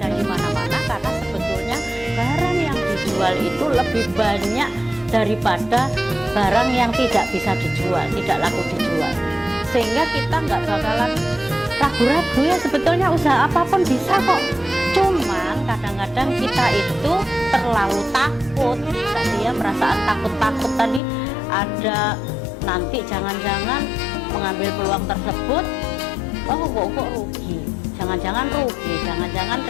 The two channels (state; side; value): drops out; right; at 21.0 s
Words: di mana-mana, karena sebetulnya barang yang dijual itu lebih banyak daripada barang yang tidak bisa dijual, tidak laku dijual. Sehingga kita nggak bakalan ragu-ragu ya, sebetulnya usaha apapun bisa kok. Cuman kadang-kadang kita itu terlalu takut tadi ya, perasaan takut-takut tadi ada, nanti jangan-jangan mengambil peluang tersebut, oh kok rugi, jangan-jangan rugi, jangan-jangan